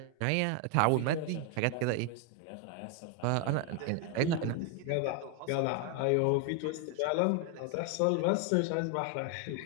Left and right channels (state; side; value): different; both; correlation 0.01